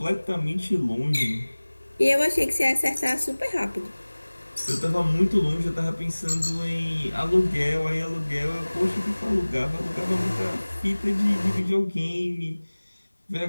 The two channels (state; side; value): inverted; both; correlation -1.00